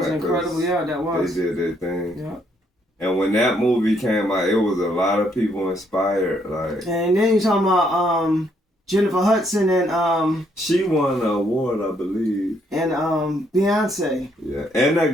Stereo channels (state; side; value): normal; both; correlation 0.71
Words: incredible. Yeah, that was. They did their thing. Yeah. And when that movie came out, it was a lot of people inspired. Like, and then you're talking about Jennifer Hudson and she won an award, I believe. And Beyonce. Yeah, and